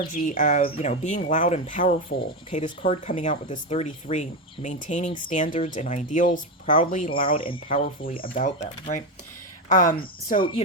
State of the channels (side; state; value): both; normal; correlation 0.13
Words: of, being loud and powerful. Okay, this card coming out with this 33, maintaining standards and ideals, proudly, loud, and powerfully about them, right? So,